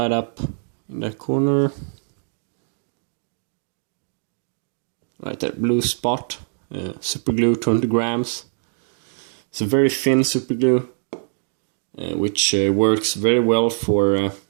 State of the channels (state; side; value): silent; left; digital silence